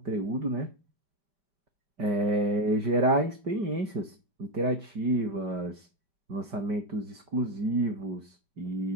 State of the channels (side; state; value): left; late; 5.1 ms